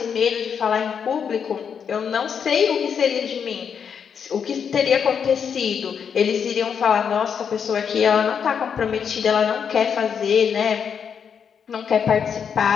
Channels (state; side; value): quieter; right; 7.1 dB